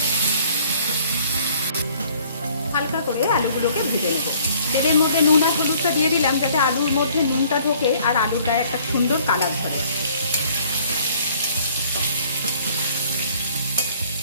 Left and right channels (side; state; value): both; inverted; correlation -0.58